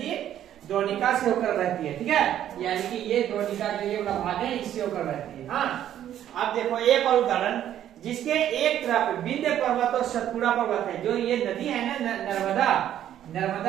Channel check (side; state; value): left; quieter; 11.1 dB